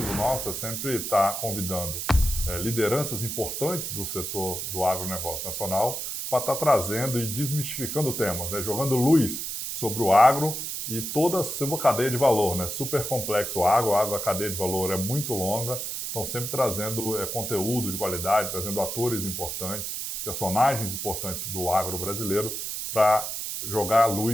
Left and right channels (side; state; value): right; noise; hiss, 4 dB below the sound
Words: nosso é sempre estar convidando lideranças importantes do setor do agronegócio nacional para estar trazendo e desmistificando temas, né? Jogando luz sobre o agro e toda a sua cadeia de valor, né? Super complexo o agro, a cadeia de valor é muito longa. Estão sempre trazendo conteúdo de qualidade, trazendo atores importantes, personagens importantes do agro brasileiro para jogar a